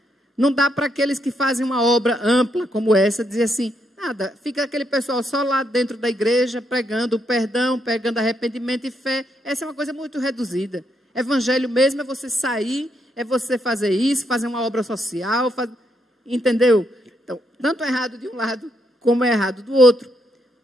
Não dá para aqueles que fazem uma obra ampla como essa, dizer assim, nada, fica aquele pessoal só lá dentro da igreja, pregando o perdão, pregando arrependimento e fé. Essa é uma coisa muito reduzida. Evangelho mesmo é você sair, é você fazer isso, fazer uma obra social, entendeu? Então, tanto é errado de um lado, como é errado do outro.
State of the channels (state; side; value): normal; both; correlation 0.77